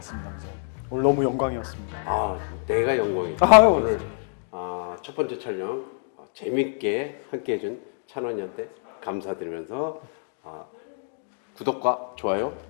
선생님. 오늘 너무 영광이었습니다. 내가 영광이죠. 아유. 오늘 첫 번째 촬영 재밌게 함께 해준 찬원이한테 감사드리면서 구독과 좋아요,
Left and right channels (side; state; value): right; silent; digital silence